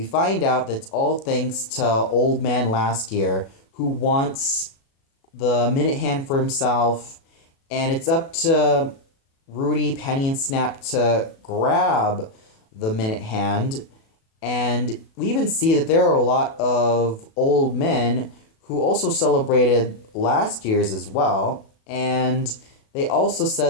find out that it's all thanks to Old Man Last Year, who wants the Minute Hand for himself, and it's up to Rudy, Penny, and Snap to grab the Minute Hand. And we even see that there are a lot of old men who also celebrated last year's as well. And they also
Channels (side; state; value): right; late; 37 ms